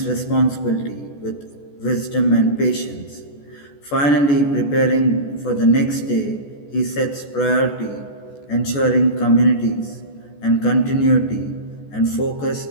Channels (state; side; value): late; right; 14 ms